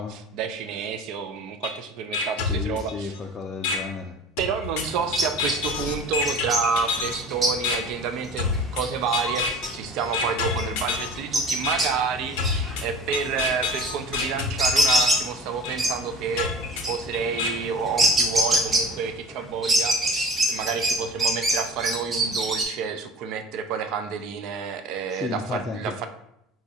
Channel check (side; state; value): both; normal; correlation 0.39